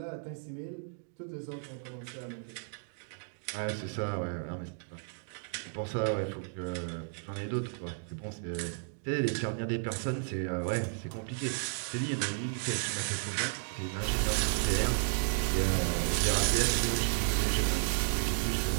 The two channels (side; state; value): left; silent; digital silence